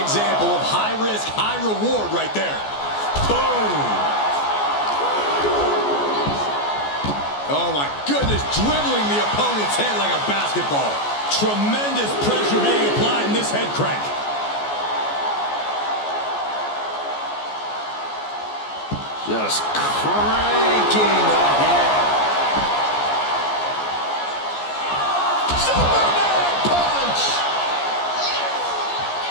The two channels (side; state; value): right; late; 14 ms